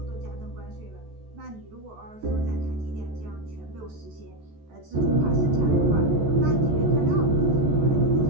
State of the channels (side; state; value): left; late; 14 ms